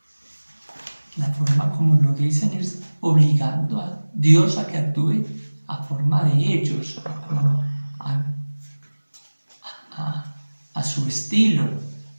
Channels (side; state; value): both; inverted; correlation -1.00